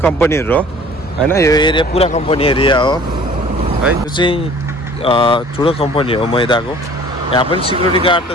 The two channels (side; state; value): both; normal; correlation 0.49